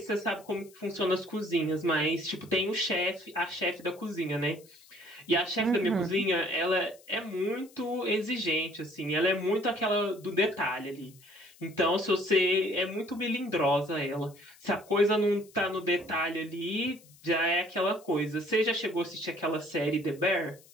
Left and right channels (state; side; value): noise; left; hiss, 25 dB below the sound